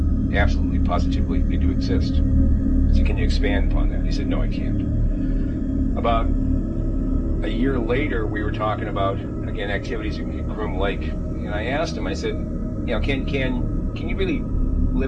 absolutely, positively, they do exist. I said, can you expand upon that? He said, no, I can't. About a year later, we were talking about, again, activities at Groom Lake, and I asked him, I said, you know, can you really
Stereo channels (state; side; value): identical; both; correlation 1.00